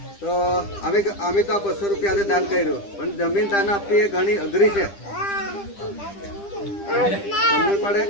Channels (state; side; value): late; right; 10 ms